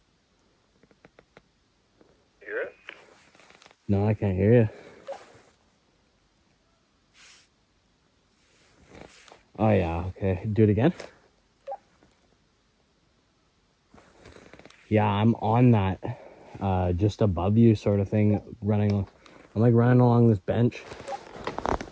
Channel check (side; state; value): both; identical; correlation 1.00